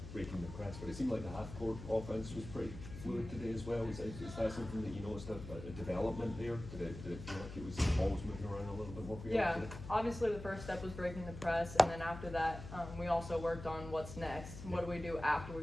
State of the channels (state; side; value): noise; left; hum, 11 dB below the sound